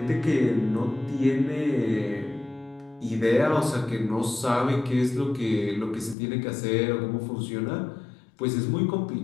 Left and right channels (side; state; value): right; drops out; at 6.2 s